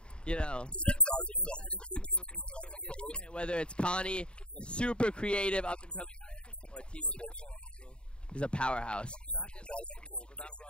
you know, whether it's Connie, super creative, up and coming, or he's a powerhouse.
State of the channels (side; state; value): right; late; 0.053 ms